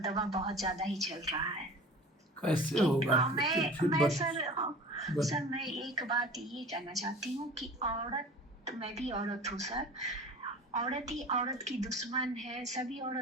बहुत ज्यादा ही चल रहा है। कैसे होगा? मैं सर मैं एक बात ये कहना चाहती हूँ कि औरत, मैं भी औरत हूँ सर, औरत ही औरत की दुश्मन है। सभी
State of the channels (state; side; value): normal; both; correlation 0.39